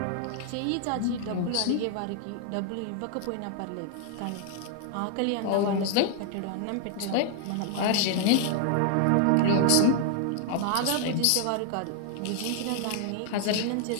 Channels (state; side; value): different; both; correlation 0.00